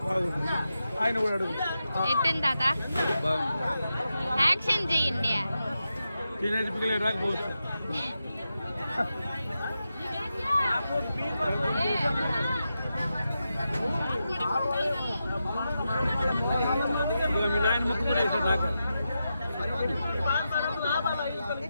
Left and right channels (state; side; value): inverted; both; correlation -0.88